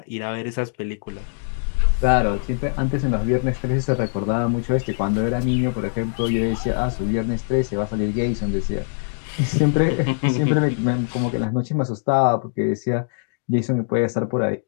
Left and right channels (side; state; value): right; silent; digital silence